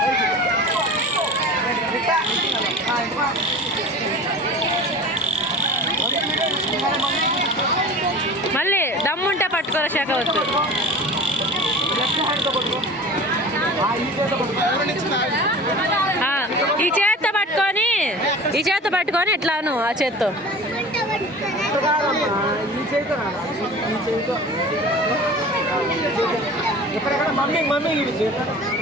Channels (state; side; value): normal; both; correlation 0.38